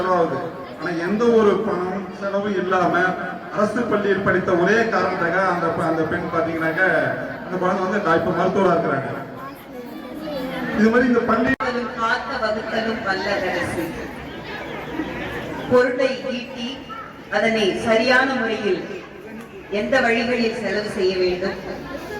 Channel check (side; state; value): both; identical; correlation 1.00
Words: ஆனா எந்த ஒரு பணம் செலவும் இல்லாம அரசு பள்ளியில் படித்த ஒரே காரணத்துக்காக அந்த பெண் பாத்தீங்கன்னாக்க அந்த குழந்தை வந்து இப்ப மருத்துவரா இருக்கிறாங்க. இது மாதிரி இந்த பள்ளி காத்த வகுத்தலும் வல்லரசு பொருளை ஈட்டி அதனை சரியான முறையில் எந்த வழிகளில் செலவு செய்ய வேண்டும்,